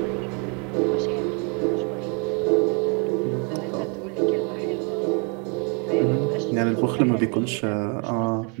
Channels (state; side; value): quieter; left; 36.3 dB